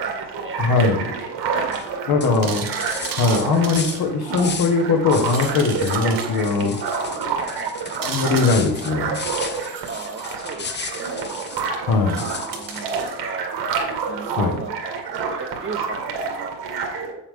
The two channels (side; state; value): both; normal; correlation 0.17